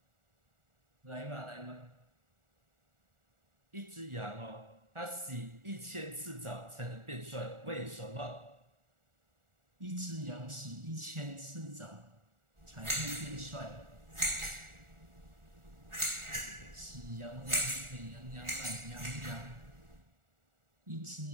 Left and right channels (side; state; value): left; late; 1.4 ms